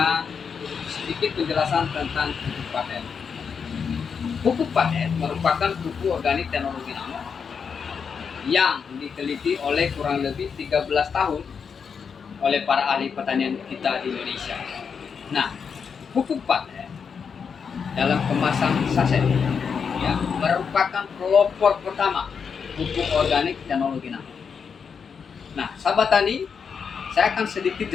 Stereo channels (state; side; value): quieter; right; 6.3 dB